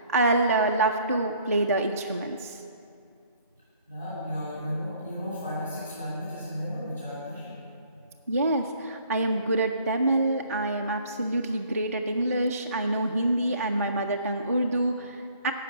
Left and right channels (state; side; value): inverted; both; correlation -0.59